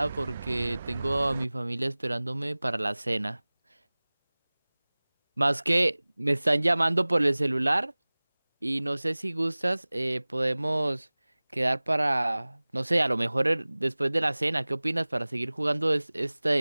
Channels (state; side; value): inverted; both; correlation -1.00